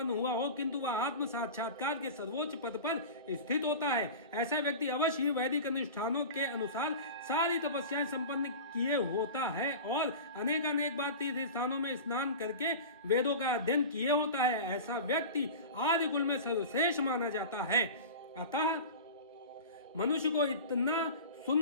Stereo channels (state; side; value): inverted; both; correlation -0.32